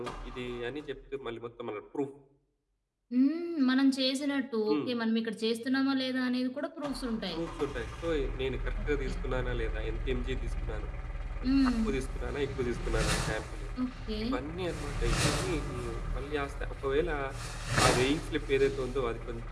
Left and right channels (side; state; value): both; identical; correlation 1.00